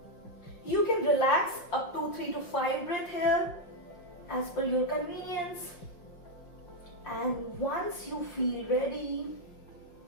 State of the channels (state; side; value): late; right; 5.6 ms